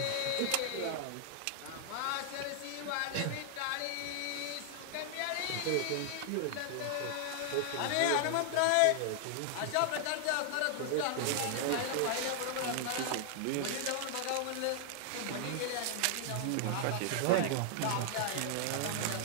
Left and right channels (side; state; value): both; different; correlation 0.00